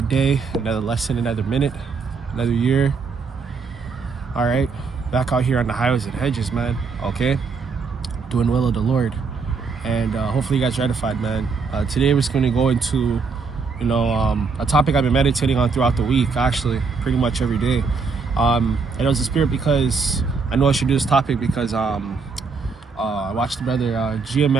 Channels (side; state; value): left; quieter; 4.8 dB